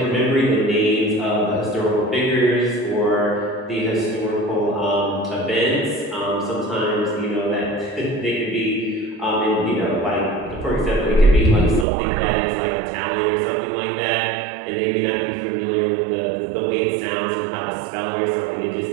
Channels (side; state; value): left; drops out; at 11.9 s